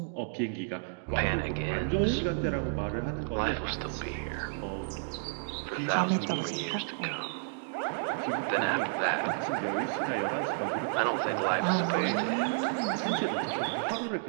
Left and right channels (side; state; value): left; silent; digital silence